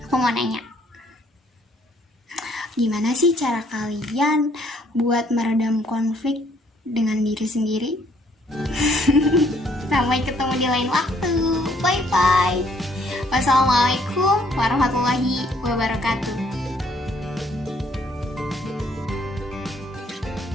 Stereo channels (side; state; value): both; normal; correlation 0.65